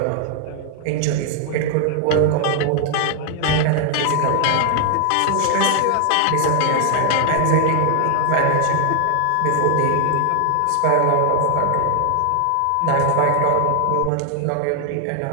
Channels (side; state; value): both; different; correlation 0.00